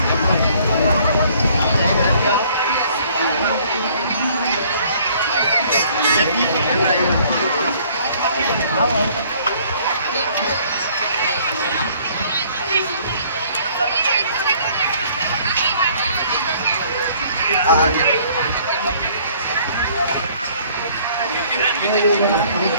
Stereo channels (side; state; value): both; inverted; correlation -0.58